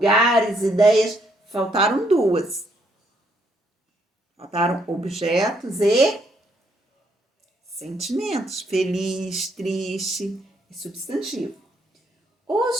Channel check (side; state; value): both; normal; correlation 0.72